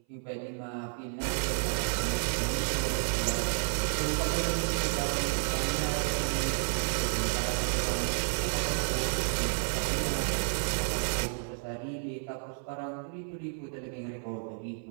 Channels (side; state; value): left; silent; 57 dB below the other